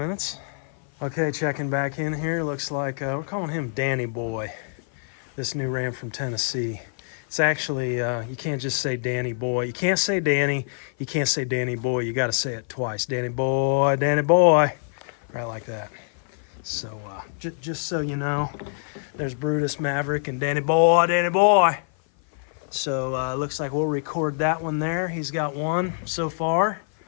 Okay, checking back in here. Looks like we're calling him Danny Boy. This new ram from Tennessee. It's actually, you can't just say Danny Boy. You can't say Danny. You can't say Danny Boy. You got to say it twice. Danny Boy, Danny Boy. Right like that. So just so you know, there's Brutus, Maverick, and Danny Boy, Danny Boy. So it looks like we'll record that one there. He's got 1 so far.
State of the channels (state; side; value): silent; right; 56 dB below the other